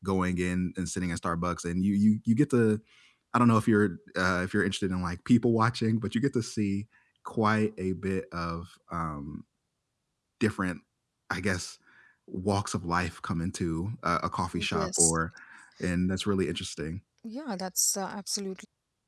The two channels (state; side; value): identical; both; correlation 1.00